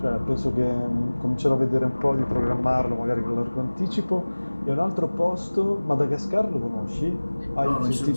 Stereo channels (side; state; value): both; inverted; correlation -1.00